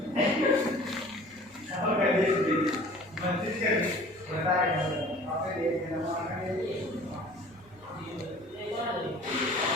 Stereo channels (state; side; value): noise; right; rumble, 27 dB below the sound